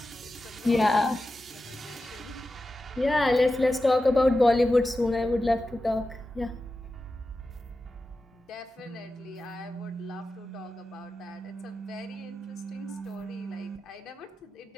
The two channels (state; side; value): normal; both; correlation 0.92